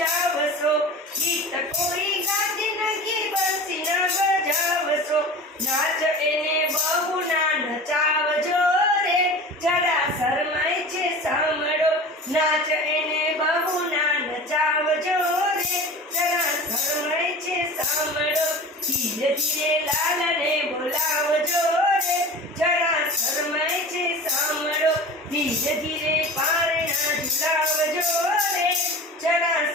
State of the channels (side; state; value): both; normal; correlation 0.36